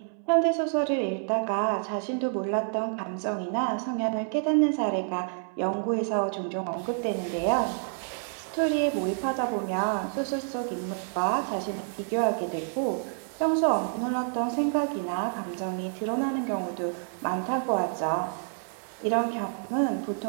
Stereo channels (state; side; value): silent; left; 59 dB below the other